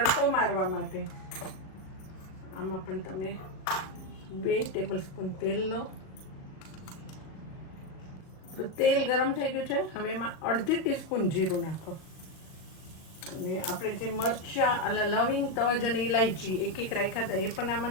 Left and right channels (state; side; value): late; right; 38 ms